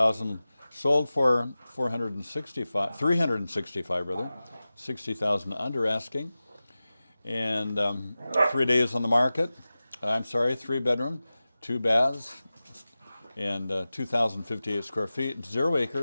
sold for 365 rather, 60,000 under asking, and 3 days on the market. I'm sorry, 3 bedroom, 2 baths, and 2,058 square feet, 0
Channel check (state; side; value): inverted; both; correlation -0.96